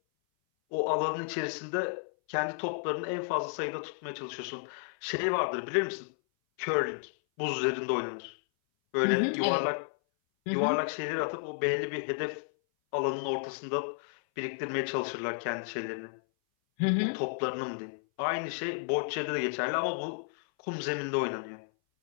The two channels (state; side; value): silent; right; 56 dB below the other